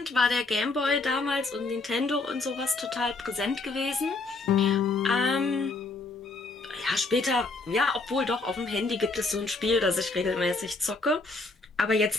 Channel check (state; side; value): quieter; right; 3.5 dB